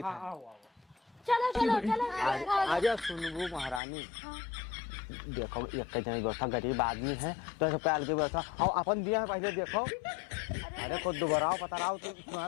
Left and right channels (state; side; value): drops out; right; at 3.8 s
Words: चलो चलो चलो आजा सुनबू महारानी। देखो एक जन व्यवस्था, गरीब आदमी है तो सबका अलग व्यवस्था और अपन दिया है पहले देखो। अरे खुद दोबारा पता रहा